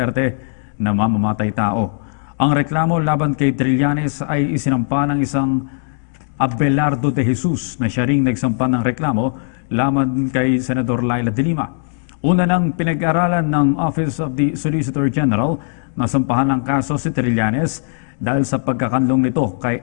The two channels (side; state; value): right; silent; digital silence